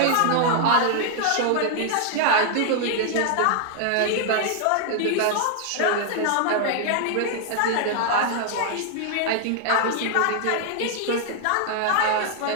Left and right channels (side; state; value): both; different; correlation 0.00